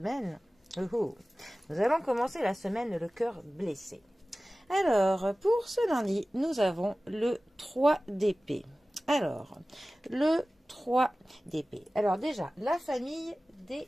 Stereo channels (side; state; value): both; normal; correlation 0.97